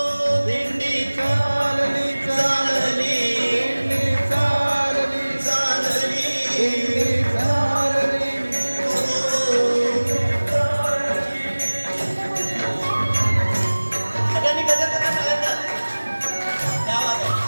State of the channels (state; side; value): inverted; both; correlation -1.00